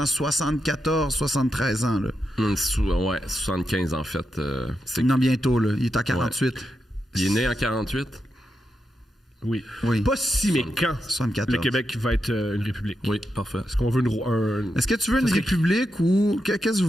74, 73 ans, là. Ouais, 75 en fait. Non, bientôt, là. Il est en 48. Ouais. Il est né en 48? Oui. Pas si, mais quand 74. le Québec va être une république? Oui, parfait. Est-ce qu'on veut Est-ce que tu veux une république ou... Qu'est-ce que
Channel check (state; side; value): normal; both; correlation 0.86